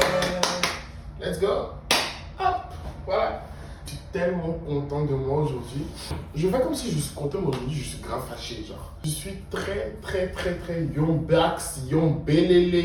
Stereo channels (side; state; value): both; identical; correlation 1.00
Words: Let's go. Hop, voilà. Je suis tellement content de moi aujourd'hui. Je fais comme si je suis content, mais aujourd'hui, je suis grave fâché, genre. Je suis très, très, très, très yombax,